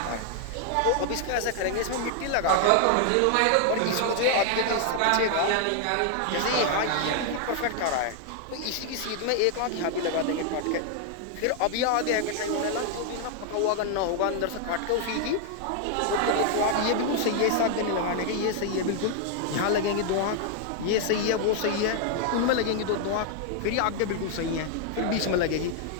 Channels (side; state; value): both; different; correlation 0.00